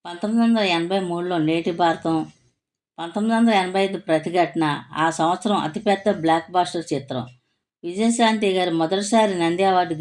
1983లో నేటి భారతం, 1985 ప్రతిఘటన ఆ సంవత్సరం అతిపెద్ద బ్లాక్ బాస్టర్ చిత్రం. విజయశాంతి గారు మొదటిసారి నంది అవార్డు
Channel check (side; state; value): both; identical; correlation 1.00